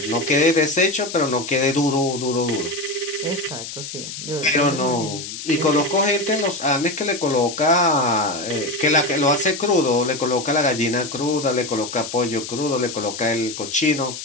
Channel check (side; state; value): left; noise; hiss, 9 dB below the sound